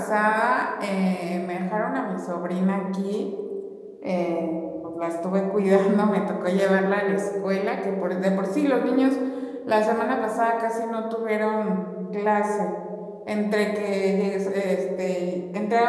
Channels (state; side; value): identical; both; correlation 1.00